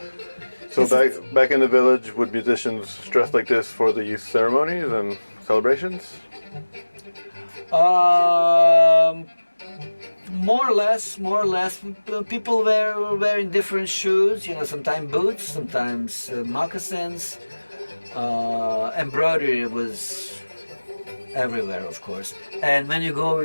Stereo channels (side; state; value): both; inverted; correlation -1.00